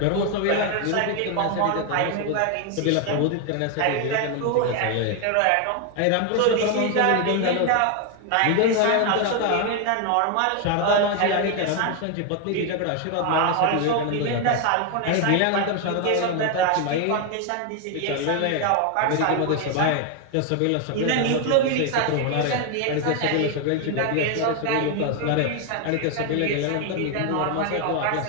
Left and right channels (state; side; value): different; both; correlation 0.01